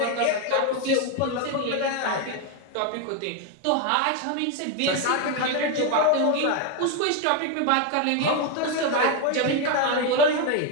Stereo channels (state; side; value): different; both; correlation 0.02